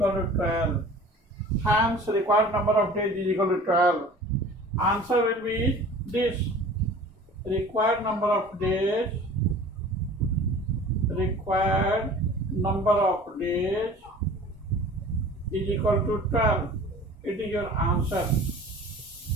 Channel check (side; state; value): both; normal; correlation 0.43